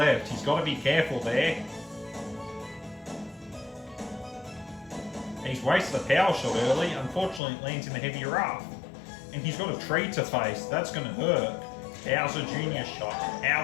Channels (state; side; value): drops out; right; at 7.4 s